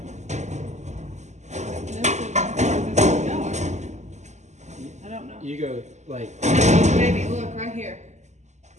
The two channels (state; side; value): late; left; 0.33 ms